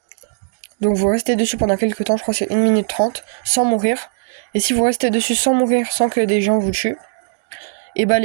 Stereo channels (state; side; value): silent; left; digital silence